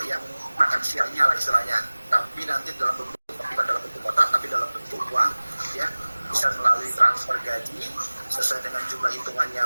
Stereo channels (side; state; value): both; inverted; correlation -1.00